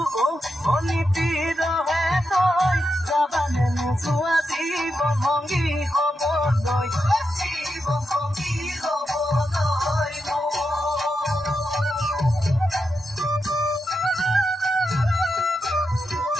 অনীতি ৰহে তই যাবানে নোযোৱা জীৱন ভংগী হ'বলৈ জীৱন ভংগী হ'বলৈ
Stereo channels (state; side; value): normal; both; correlation 0.86